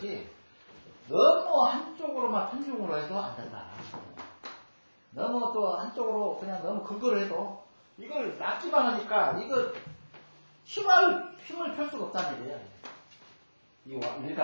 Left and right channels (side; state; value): both; inverted; correlation -1.00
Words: 너무 한쪽으로만 편중으로 해도 안 된다. 너무 또 한쪽으로 그냥 너무 극을 해도 이걸 낚기만 하니까 이거 힘을 펼 수가 없다는 얘기예요. 이